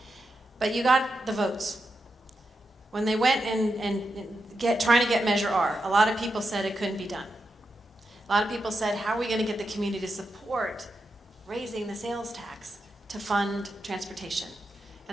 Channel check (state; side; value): normal; both; correlation 0.87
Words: But you got the votes. When they went and trying to get Measure R, a lot of people said it couldn't be done. A lot of people said, how are we going to get the community to support raising the sales tax to fund transportation?